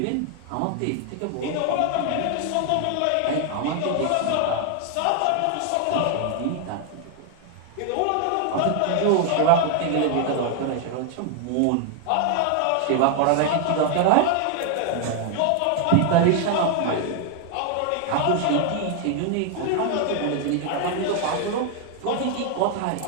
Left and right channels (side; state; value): both; different; correlation 0.00